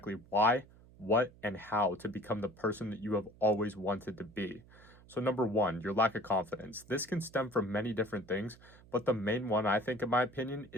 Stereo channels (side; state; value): right; noise; hum, 24 dB below the sound